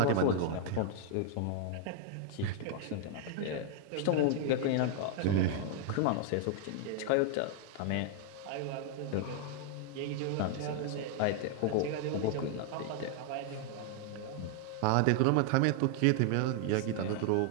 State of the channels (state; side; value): different; both; correlation 0.00